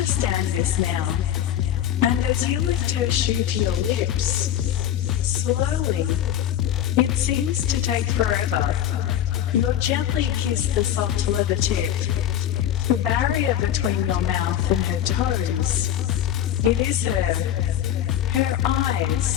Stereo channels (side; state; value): right; quieter; 11.0 dB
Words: this now. And as you lift her shoe to your lips, slowly, it seems to take forever, you'll gently kiss the soft leather tip, the barrier between your mouth and her toes. It is her